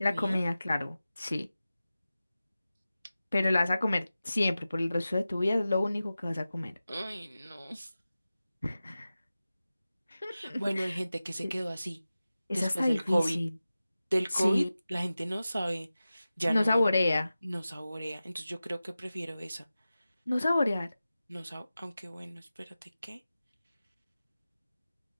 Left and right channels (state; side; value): inverted; both; correlation -0.95